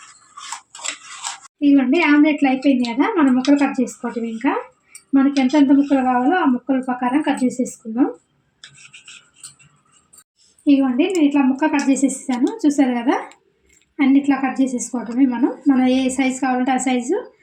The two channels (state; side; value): identical; both; correlation 1.00